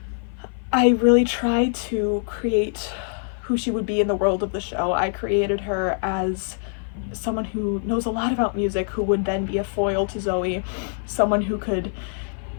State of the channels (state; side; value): silent; right; 55 dB below the other